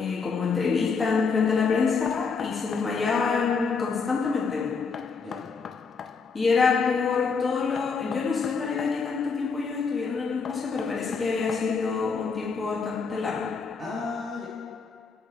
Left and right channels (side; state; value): right; quieter; 5.1 dB